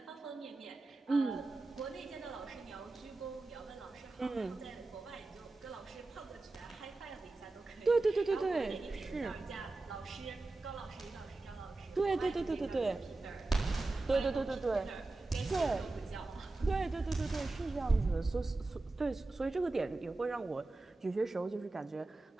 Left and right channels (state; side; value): quieter; left; 3.2 dB